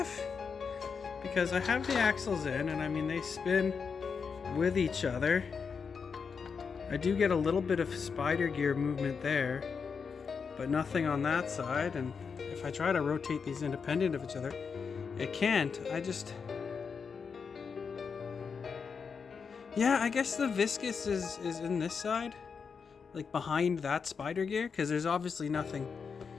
Because I have the axles in, and I mean, they spin with each other. I do get a little bit of spider gear movement there, but nothing on that side, and if I try to rotate these independent of each other, it can't. Yeah, I guess the viscous is in this side, like behind that spider gear, because there's obviously nothing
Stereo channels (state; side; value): quieter; right; 5.8 dB